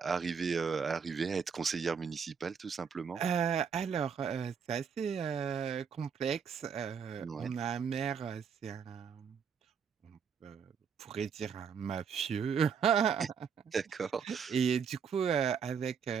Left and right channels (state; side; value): quieter; left; 6.7 dB